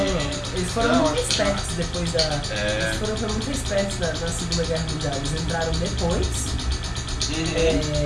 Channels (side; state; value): both; identical; correlation 1.00